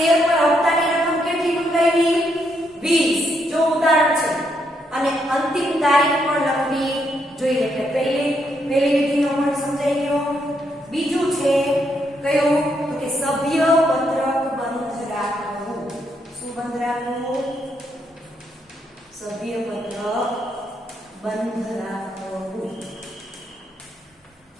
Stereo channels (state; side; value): normal; both; correlation 0.77